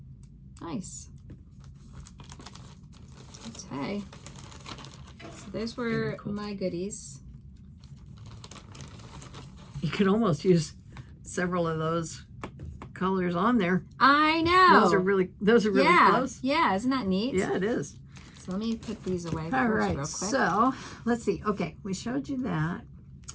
Nice. Okay. So those were my goodies. You could almost use several of those colors on there. I know. Those are really close. Yeah, isn't that neat? Yeah, it is. So let me put these away All right, real quick. So let's see. Okay, we showed you that.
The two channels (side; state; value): both; identical; correlation 1.00